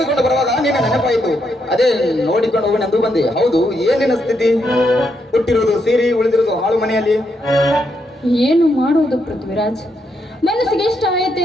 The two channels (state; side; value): normal; both; correlation 0.79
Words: ಬರುವಾಗ ನಿನ್ನ ನೆನಪಾಯಿತು. ಅದೇ ನೋಡಿಕೊಂಡು ಹೋಗಿ ಬಂದೆ. ಹೌದು, ಏನಿನ ಸ್ಥಿತಿ? ಹುಟ್ಟಿರೋದು ಸೀರೆ, ಉಳಿದಿರೋದು ಹಾಳು ಮನೆಯಲ್ಲಿ. ಏನು ಮಾಡುವುದು ಪೃಥ್ವಿರಾಜ್, ಮನಸ್ಸಿಗೆ ಇಷ್ಟ